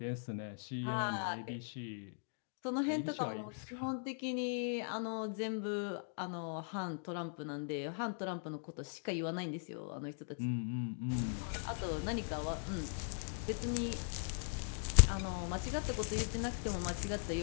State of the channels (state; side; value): silent; right; digital silence